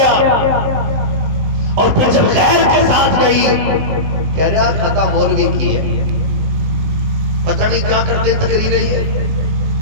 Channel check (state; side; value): late; left; 20 ms